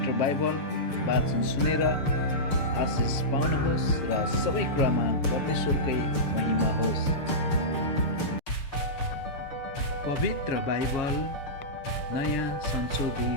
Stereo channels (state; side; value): late; right; 6.7 ms